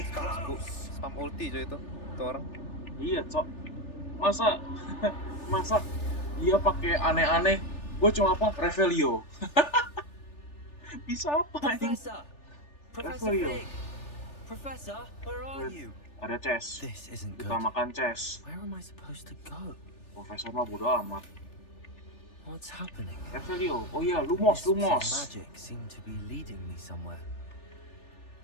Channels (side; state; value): right; late; 3.4 ms